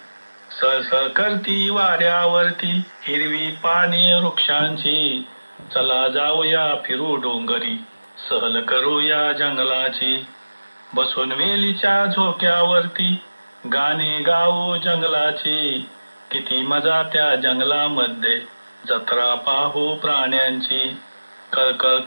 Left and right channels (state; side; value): inverted; both; correlation -1.00